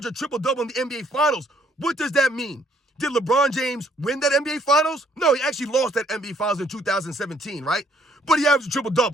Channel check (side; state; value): both; normal; correlation 0.65